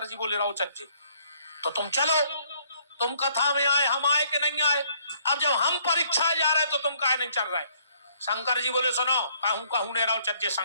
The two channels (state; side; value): inverted; both; correlation -0.65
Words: जी बोले रहो चज्जे तो तुम चलो। तुम कथा में आए, हम आए कि नहीं आए? अब जब हम परीक्षा जा रहे तो तुम काहे नहीं चल रहे? शंकर जी बोले सुनो, कहूं कहूं ने रहो चज्जे